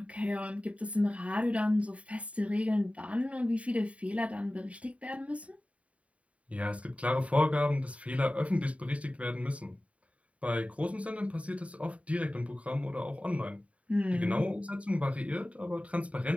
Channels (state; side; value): late; left; 0.066 ms